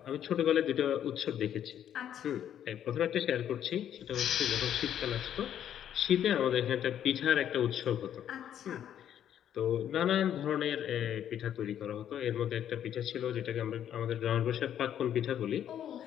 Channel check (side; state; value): right; quieter; 10.1 dB